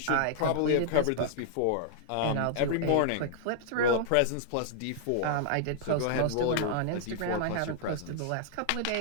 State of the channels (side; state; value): both; different; correlation -0.01